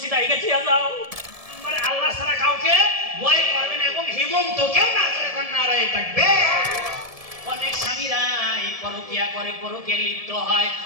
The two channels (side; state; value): left; late; 1.7 ms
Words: আইগা থিয়া যাও। মানে আল্লাহ ছাড়া কাউকে ভয় করবে না এবং হেমন্ত কেউ না করে নারায়ে থাকবে। অনেক স্বামীরা পরকিয়া করে, পরকিয়া লিপ্ত হয়,